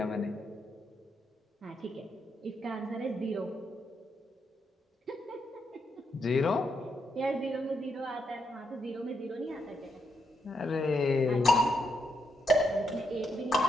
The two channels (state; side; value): normal; both; correlation 0.80